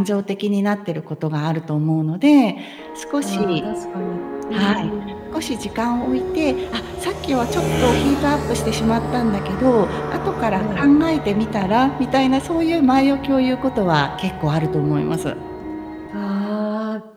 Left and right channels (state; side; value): identical; both; correlation 1.00